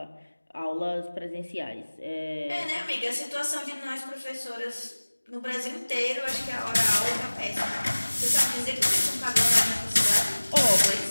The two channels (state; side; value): inverted; both; correlation -1.00